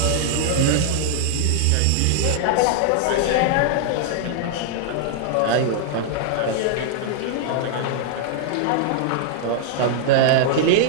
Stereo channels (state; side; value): different; both; correlation -0.01